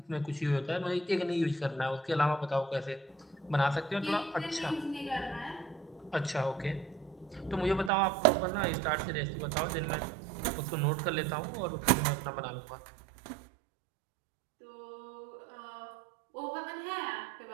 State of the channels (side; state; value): left; drops out; at 7.9 s